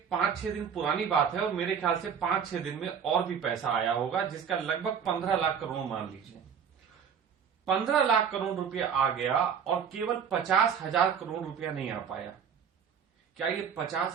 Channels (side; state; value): left; quieter; 7.4 dB